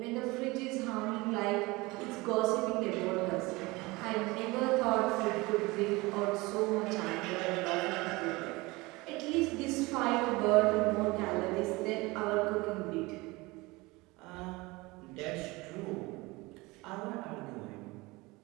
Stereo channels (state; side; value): quieter; left; 22.9 dB